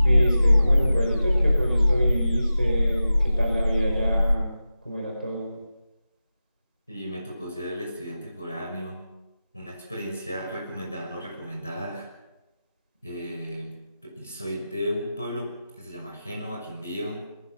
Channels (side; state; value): both; inverted; correlation -0.93